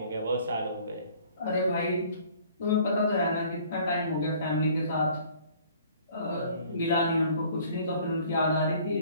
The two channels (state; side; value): inverted; both; correlation -0.54